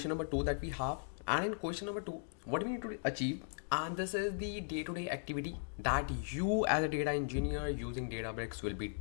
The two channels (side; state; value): right; silent; digital silence